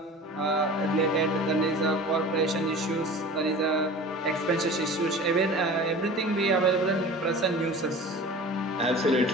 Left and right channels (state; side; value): normal; both; correlation 0.38